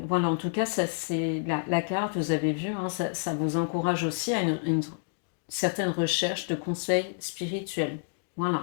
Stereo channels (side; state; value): right; silent; digital silence